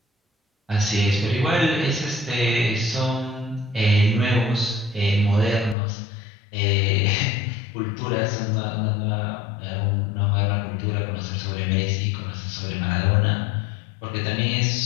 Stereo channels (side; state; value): right; drops out; at 5.8 s